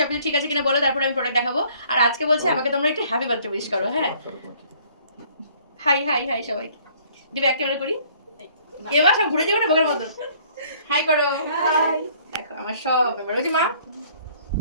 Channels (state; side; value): inverted; both; correlation -0.58